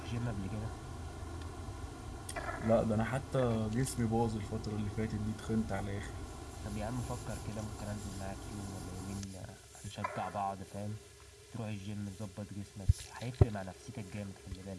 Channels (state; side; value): identical; both; correlation 1.00